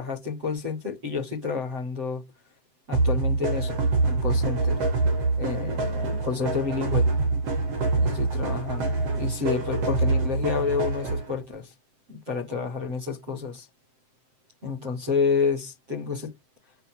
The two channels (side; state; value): left; late; 7.7 ms